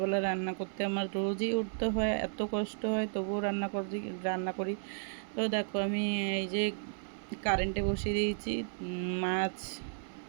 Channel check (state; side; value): silent; left; digital silence